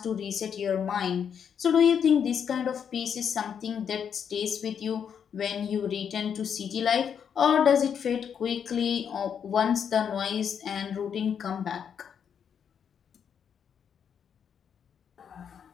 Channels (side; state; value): right; quieter; 7.7 dB